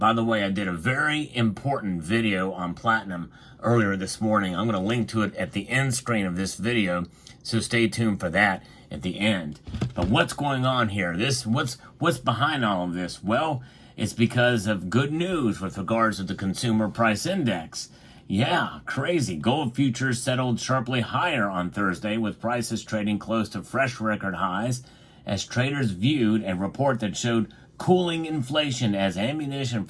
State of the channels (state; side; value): identical; both; correlation 1.00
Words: the way, I did a very important video on platinum earlier this morning. I'm going to link to it at the end screen of this video, so stay tuned for that at the end. But what's going on here? What's behind all of this? Well, it's because of good news with regards to the consumer price index. Yeah, crazy. Gold futures settled sharply higher on Thursday, with prices trading close to fresh record highs as traders viewed a report that showed cooling inflation as ammunition